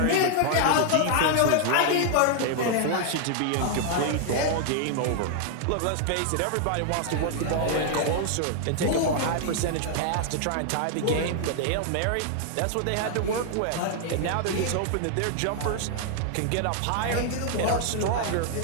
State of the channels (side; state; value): both; different; correlation 0.00